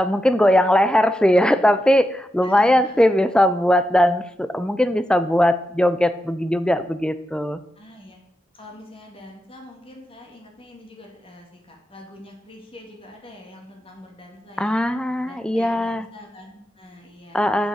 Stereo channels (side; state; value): both; normal; correlation 0.88